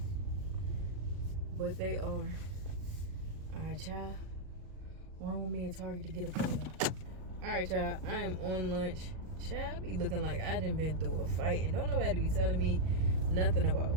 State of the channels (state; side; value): late; left; 38 ms